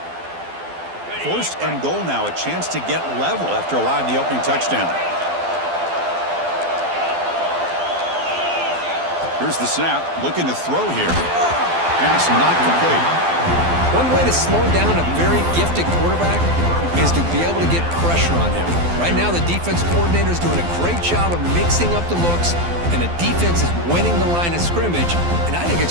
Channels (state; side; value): late; left; 12 ms